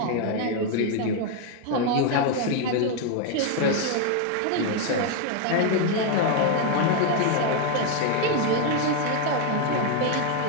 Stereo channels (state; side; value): different; both; correlation 0.01